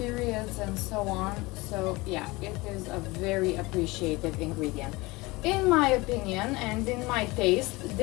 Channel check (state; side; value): quieter; right; 22.6 dB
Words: and so on. So yeah, it is a very appreciated ingredient. In my opinion and in my taste,